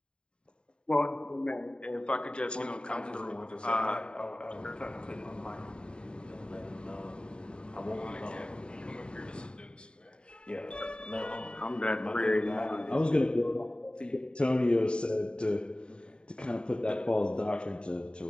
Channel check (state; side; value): late; right; 0.051 ms